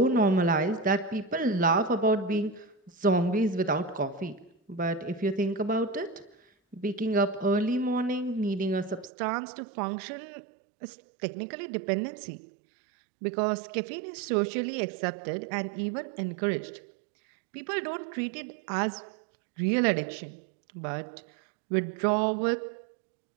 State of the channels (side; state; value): left; drops out; at 9.1 s